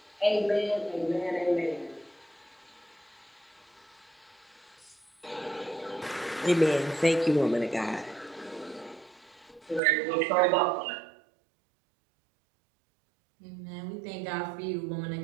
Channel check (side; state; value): left; drops out; at 9.8 s